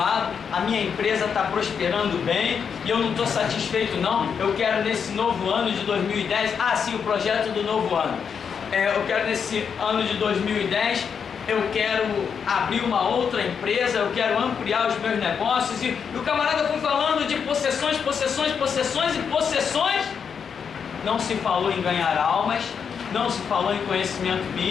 a minha empresa está prosperando bem e eu não estou satisfeito não, eu quero nesse novo ano de 2010, sim, o projeto do novo ano. Eu quero nesse ano de 2010, eu quero abrir uma outra empresa, eu quero ampliar os meus negócios. E o camarada foi falando de possessões, possessões, possessões e possessões. Não se falou em ganhar almas, não se falou em conhecimento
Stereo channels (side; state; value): right; quieter; 6.8 dB